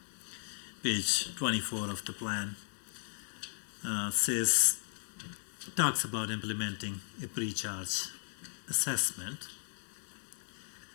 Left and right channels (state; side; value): silent; right; digital silence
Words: Page 24 of the plan talks about implementing a pre-charge assessment